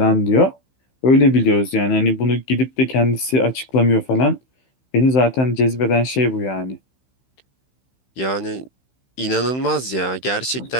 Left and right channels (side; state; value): right; late; 16 ms